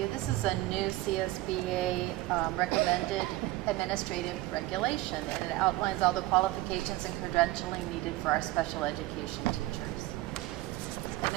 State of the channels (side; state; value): left; quieter; 18.4 dB